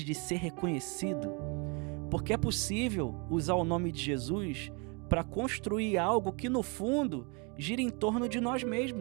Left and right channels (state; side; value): quieter; left; 32.6 dB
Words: de ser reconhecido? Porque é possível usar o nome de Jesus para construir algo que, no fundo, gira em torno de nós